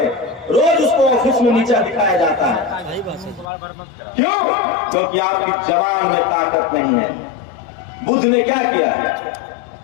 रोज उसको ऑफिस में नीचा दिखाया जाता है। क्यों? क्योंकि आपकी जवान में ताकत नहीं है। बुद्ध ने क्या किया?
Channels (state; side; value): drops out; right; at 3.5 s